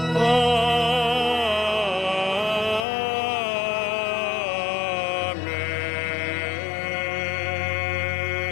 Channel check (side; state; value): right; drops out; at 2.9 s